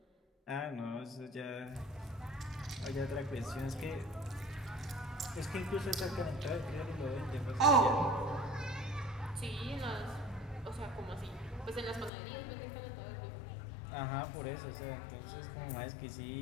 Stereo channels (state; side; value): drops out; right; at 12.1 s